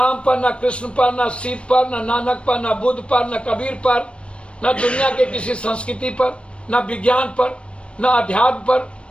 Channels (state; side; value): late; right; 0.059 ms